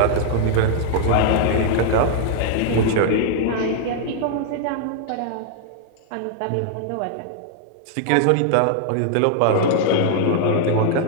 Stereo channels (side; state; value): both; different; correlation -0.01